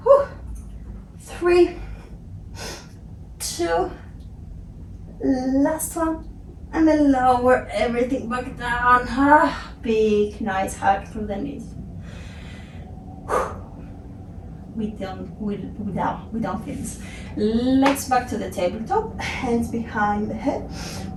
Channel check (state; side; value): identical; both; correlation 1.00